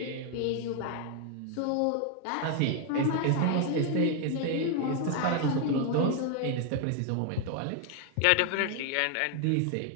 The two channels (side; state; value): both; different; correlation 0.01